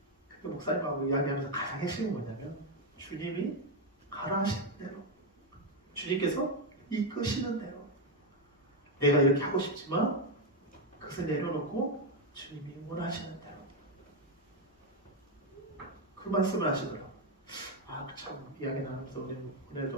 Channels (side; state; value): both; normal; correlation 0.05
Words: 근데 목사님하고 이야기하면서 가장 핵심은 뭐냐면 주님이 가라 하시는 대로 주님께서 이끄시는 대로 내가 이렇게 하고 싶지만 그것을 내려놓고 주님이 원하시는 대로 그 말씀을 하시더라고요. 참 이야기 나누면서